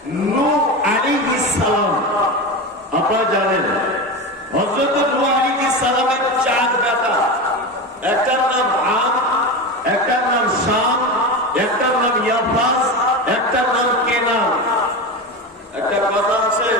নূহ আলাইহিস সালাম। আপনারা জানেন হযরত নূহ আলাইহিস সালামের 4 বেটা, একটার নাম আম, একটার নাম শাম, একটার নাম ইয়াফাস, একটার নাম কেনান। একটা কথা আছে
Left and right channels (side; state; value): both; normal; correlation 0.22